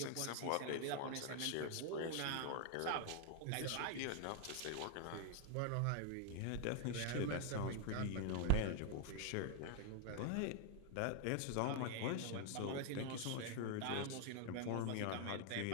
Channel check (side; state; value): both; different; correlation 0.00